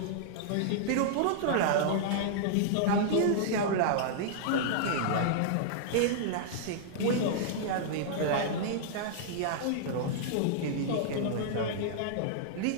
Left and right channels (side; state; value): both; different; correlation -0.02